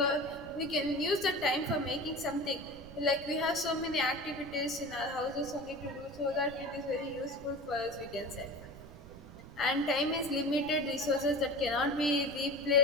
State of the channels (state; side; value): noise; right; rumble, 17 dB below the sound